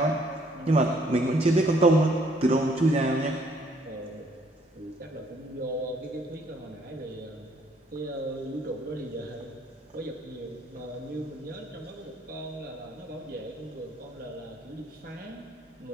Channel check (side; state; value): both; normal; correlation 0.65